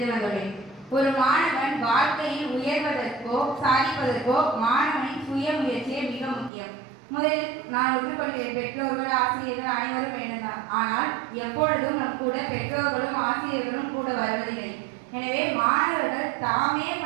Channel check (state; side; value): drops out; left; at 6.5 s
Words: வந்துள்ளேன். ஒரு மாணவன் வாழ்க்கையில் உயர்வதற்கோ சாதிப்பதற்கோ மாணவனின் சுயமுயற்சியே மிக முக்கியம். முதலில் நான் ஒற்றுக்கொள்கிறேன். பெற்றோர்கள் ஆசிரியர்கள் அனைவரும் வேண்டும்தான். ஆனால் எப்பொழுதும் நம் கூட பெற்றோர்களும் ஆசிரியர்களும் கூட வருவதில்லை. எனவே மாணவர்கள் தாமே